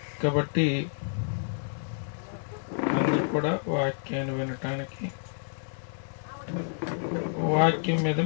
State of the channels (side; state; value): right; silent; 58 dB below the other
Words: కాబట్టి అందరూ కూడా వాక్యాన్ని వినటానికి వాక్యం మీద